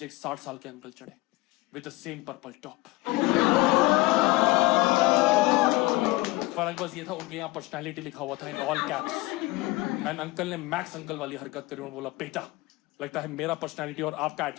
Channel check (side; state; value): right; quieter; 21.2 dB